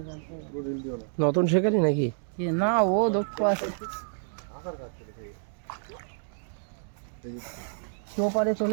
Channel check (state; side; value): silent; left; digital silence